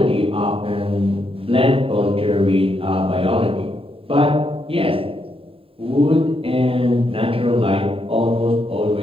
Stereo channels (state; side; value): late; left; 0.27 ms